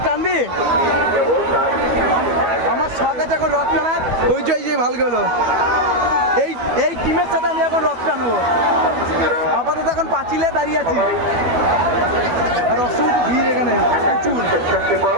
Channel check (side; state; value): left; late; 12 ms